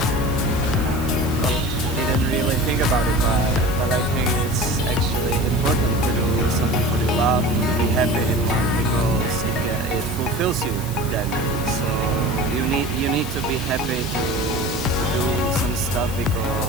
Didn't really think about it, but I think it's actually important to do something for your love, to be happy in life, because it fulfills you then. So you need to be happy to do some stuff,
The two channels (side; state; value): left; noise; hiss, 13 dB below the sound